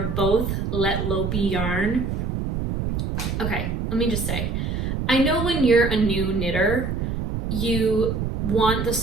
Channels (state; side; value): noise; right; rumble, 2 dB below the sound